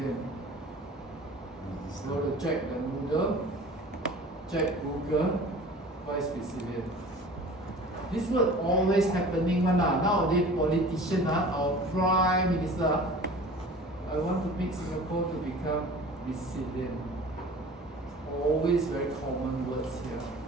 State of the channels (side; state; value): both; normal; correlation 0.42